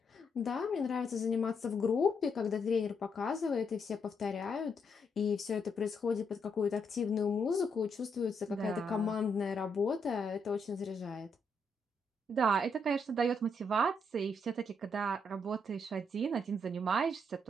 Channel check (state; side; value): normal; both; correlation 0.77